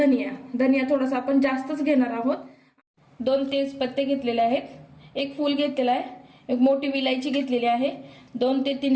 थोडासा आपण जास्तच घेणार आहोत। 2 तेजपत्ते घेतलेले आहेत, 1 फूल घेतलेला आहे, 1 मोठी विलायची घेतलेली आहे, 2 ते 3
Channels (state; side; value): identical; both; correlation 1.00